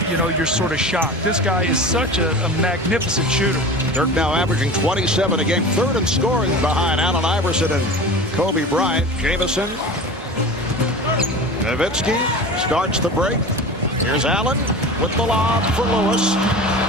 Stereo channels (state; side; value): normal; both; correlation 0.34